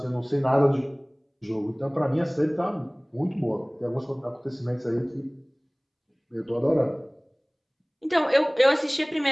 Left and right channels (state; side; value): identical; both; correlation 1.00